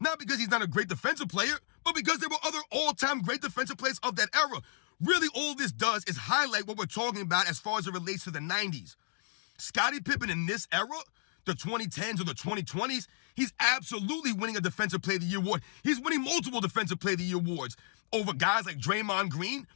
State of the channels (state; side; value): silent; right; digital silence